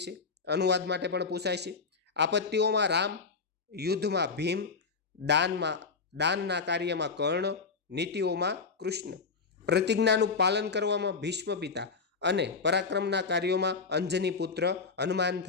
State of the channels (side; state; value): right; quieter; 4.9 dB